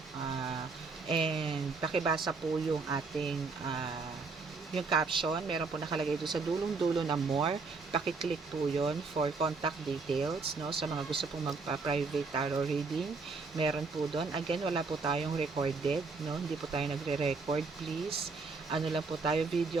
and pakibasa po yung ating yung caption. Meron po nakalagay doon sa dulong-dulo na more. Paki-click po yon for contact details, no? Sa mga gusto pong magpa-private tarot reading, meron po doon. Again, wala po tayong recorded, no? Hindi po tayo nagre-record, please. Ano lang po tayo,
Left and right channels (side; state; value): left; quieter; 4.4 dB